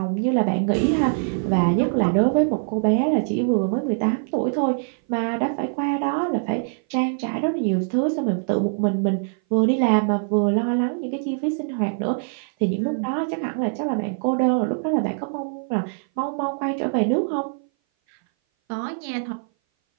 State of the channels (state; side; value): silent; left; 58 dB below the other